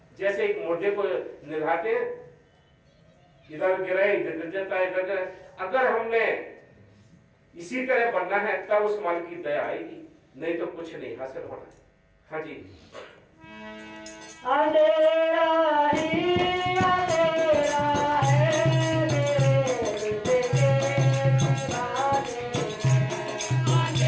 जैसे एक मुर्दे को निभाते, इधर गिरे इधर गिर जाता है, इधर। अगर हमने इसी तरह बनना है तब उस मालिक की दया आएगी, नहीं तो कुछ नहीं हासिल होना। हाँ जी। अंधेरा ही अंधेरा है मेरे दिल के दीवाने,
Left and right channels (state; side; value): identical; both; correlation 1.00